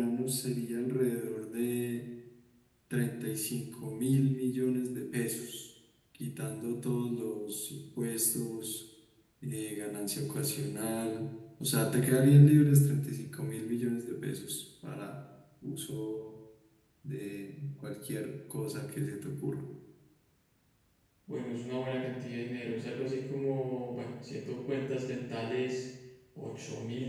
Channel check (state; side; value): identical; both; correlation 1.00